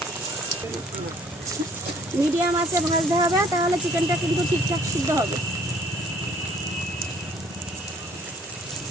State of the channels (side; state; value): both; normal; correlation 0.59